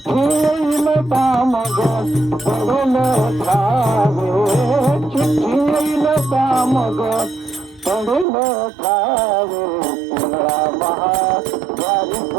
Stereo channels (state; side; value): drops out; left; at 8.2 s